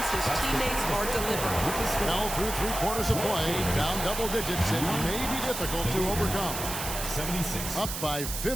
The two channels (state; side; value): noise; right; hiss, 5 dB below the sound